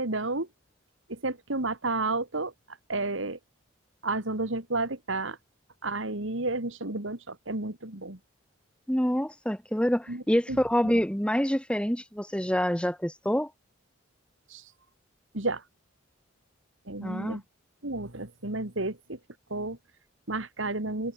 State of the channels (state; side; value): normal; both; correlation 0.52